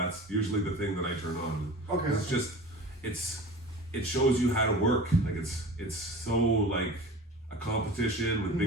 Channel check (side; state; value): both; normal; correlation 0.37